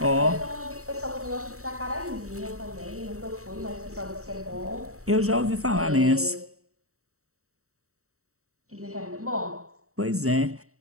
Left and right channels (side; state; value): left; late; 0.64 ms